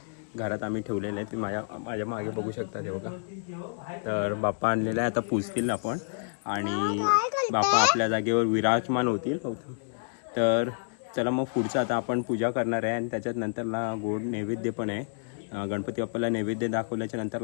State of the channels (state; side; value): silent; right; digital silence